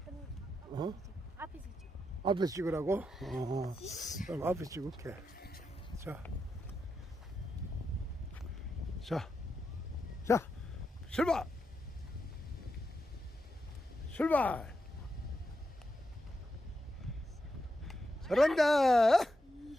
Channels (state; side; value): normal; both; correlation 0.85